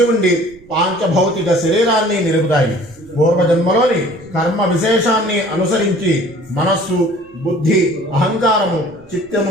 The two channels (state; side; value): noise; right; rumble, 26 dB below the sound